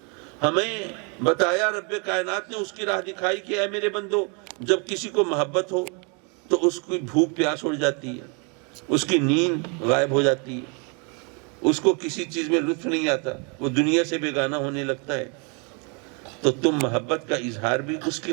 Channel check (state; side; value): quieter; left; 34.6 dB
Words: ہمیں بتایا رب کائنات نے، اس کی راہ دکھائی کہ اے میرے بندو، جب کسی کو محبت ہو تو اس کی بھوک پیاس اڑ جاتی ہے، اس کی نیند غائب ہو جاتی ہے، اس کو کسی چیز میں لطف نہیں آتا، وہ دنیا سے بیگانہ ہونے لگتا ہے. تو تم محبت کا اظہار بھی اس کی